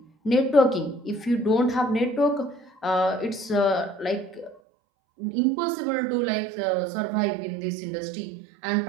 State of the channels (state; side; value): drops out; left; at 4.6 s